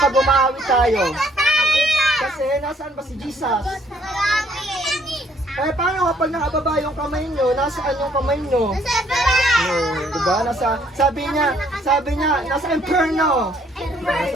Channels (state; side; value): normal; both; correlation 0.65